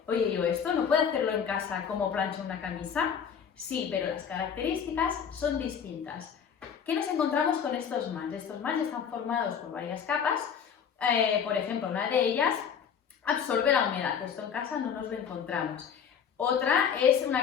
Oye, ¿yo esto no puedo hacerlo en casa como plancho una camisa? Sí, pero las características son distintas. ¿Qué nos encontramos con estos mats? Estos mats están formados por varias capas. Por ejemplo, una de ellas absorbe la humedad. Esto en casa no nos lo encontramos. Otra es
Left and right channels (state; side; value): quieter; right; 7.4 dB